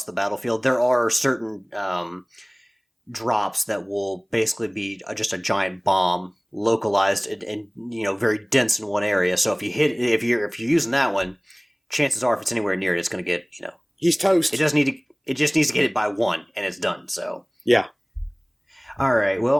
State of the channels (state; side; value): identical; both; correlation 1.00